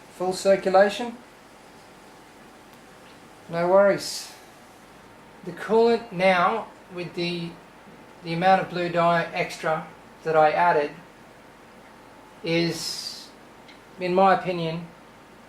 Full circulation. No worries. The coolant now, with the amount of blue dye extra that I added, is, in my opinion,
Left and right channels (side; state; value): both; identical; correlation 1.00